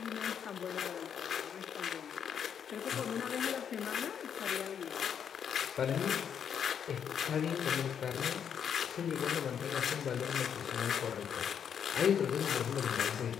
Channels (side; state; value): right; quieter; 8.0 dB